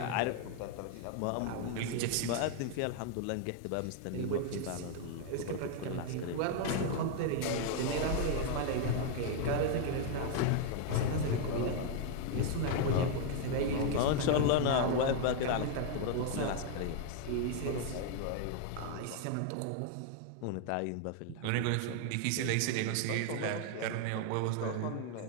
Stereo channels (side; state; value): both; different; correlation 0.00